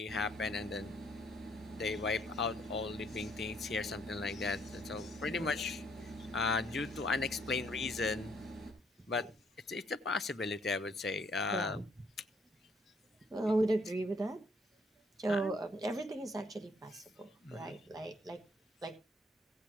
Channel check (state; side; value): normal; both; correlation 0.67